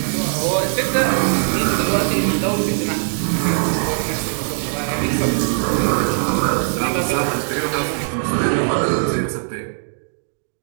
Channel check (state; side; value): silent; left; digital silence